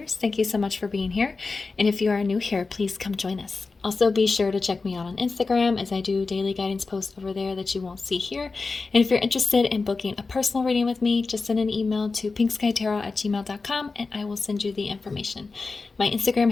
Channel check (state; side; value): quieter; right; 4.0 dB